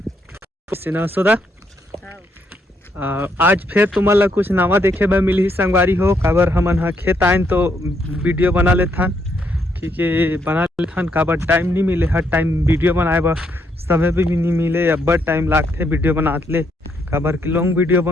से न सोदा आज फिर तुमन ला कुछ नवा देखे बर मिली संगवारी हो। काबर हमन हा खेत आइन तो वीडियो बना लेथन, क्योंकि बना लेथन काबर टाइम नहीं मिले, हर टाइम वीडियो बनाए बर समय भी नहीं मिले, अब्बड़ टाइम लागथे वीडियो बनात ले। काबर कि लॉन्ग वीडियो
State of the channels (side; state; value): both; normal; correlation 0.75